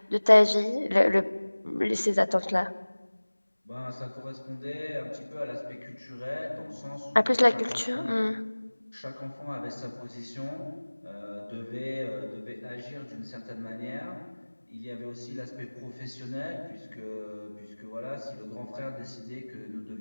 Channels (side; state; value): both; inverted; correlation -1.00